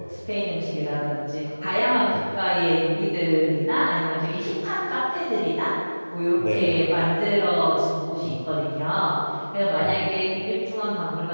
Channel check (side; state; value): both; inverted; correlation -1.00